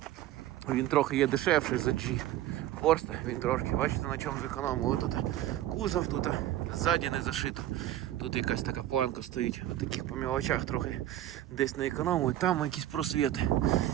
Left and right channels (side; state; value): left; quieter; 13.4 dB